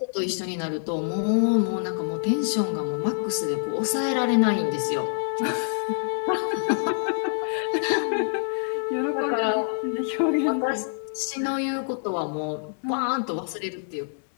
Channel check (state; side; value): silent; right; 61 dB below the other